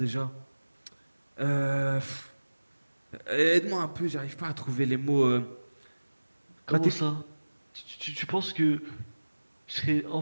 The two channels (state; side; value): inverted; both; correlation -1.00